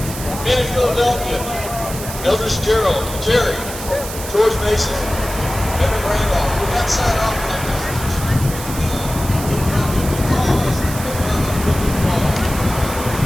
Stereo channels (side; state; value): right; noise; hiss, 10 dB below the sound